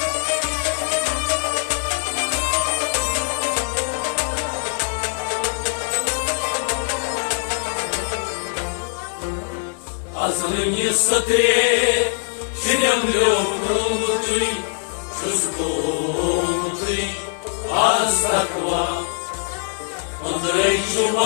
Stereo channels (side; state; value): right; silent; 64 dB below the other